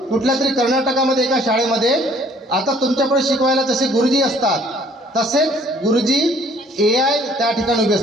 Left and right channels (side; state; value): both; normal; correlation 0.59